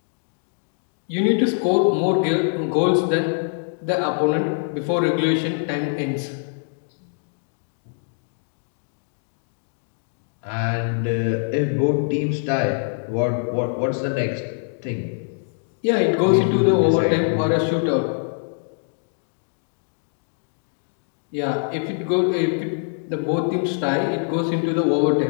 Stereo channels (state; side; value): silent; right; digital silence